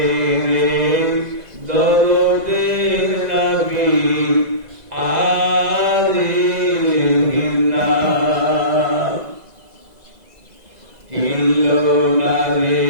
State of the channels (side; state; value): left; late; 2.0 ms